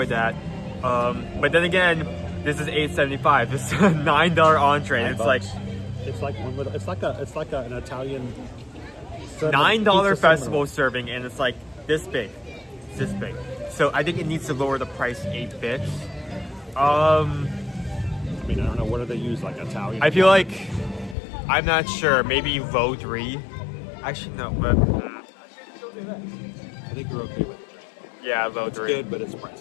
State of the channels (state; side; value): drops out; right; at 21.2 s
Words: that. But then again, this is $8.75. This is a $9 entree. And it's like an Italian $9 festival serving, and it's like this big. It's this big. So I think it needs to lower the price 8 bits. I mean, I don't know, what do they use, like Italian? I feel like, I'm not sure, maybe low 3. Actually, no, but... I think you're okay with it. Yeah, low 3. It's good, but it's